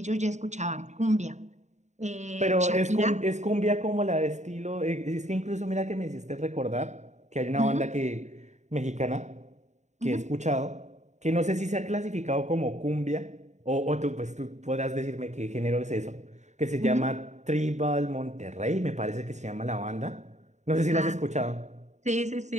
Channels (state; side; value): late; left; 0.34 ms